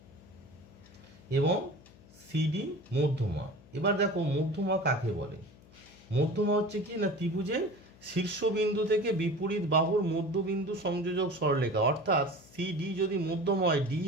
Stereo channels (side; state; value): left; noise; hum, 24 dB below the sound